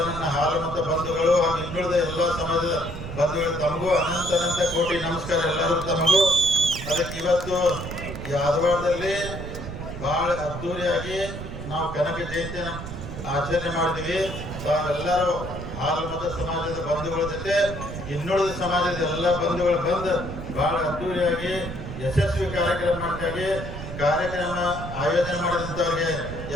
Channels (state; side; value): noise; right; rumble, 8 dB below the sound